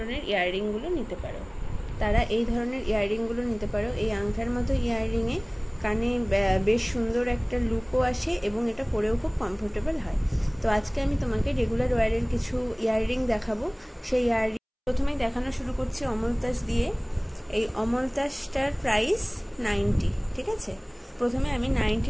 ইয়াররিংগুলো নিতে পারো। এই আংটার মতো ইয়াররিংয়ে কানে বেশ সুন্দর একটা লুকও আসে এবং এটা পরেও খুব কমফোর্টেবল হয়। তো আজকে আমি তোমাকে রেগুলার ওয়্যারের কিছু ইয়াররিং দেখাবো। সেই ইয়াররিং প্রথমেই দেখানো শুরু করছি অমলতাস দিয়ে। এই অমলতাসটার প্রাইস 90, ঠিক আছে। প্রথমে আমি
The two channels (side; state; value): both; identical; correlation 1.00